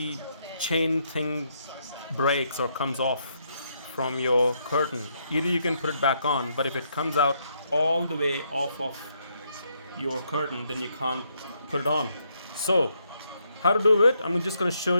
chain thing breaks or comes off from your curtain? Either you can put it back on, but if it comes out all the way off of your curtain, then you can't put it on. So, how to do it? I'm just going to show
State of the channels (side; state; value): both; inverted; correlation -0.75